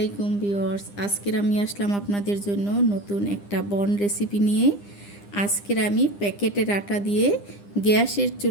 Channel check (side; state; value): right; late; 9.9 ms